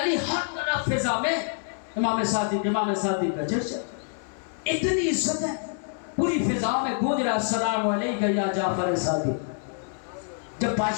ہر طرف فضا میں امام صادق کا چرچا، اتنی عزت ہے، پوری فضاؤں میں گونج رہا، السلام علیکہ یا جعفر صادق۔ جب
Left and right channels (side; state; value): right; silent; digital silence